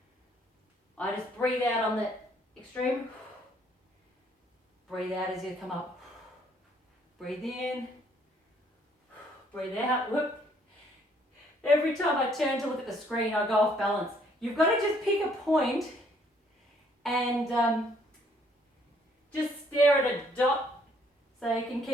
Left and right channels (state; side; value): normal; both; correlation 0.65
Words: I just breathe out on the extreme. Breathe out as you come up. Breathe in. Breathe out. Whoop. Every time I turn to look at the screen, I go off balance. You've got to just pick a point and just stare at a dot so you can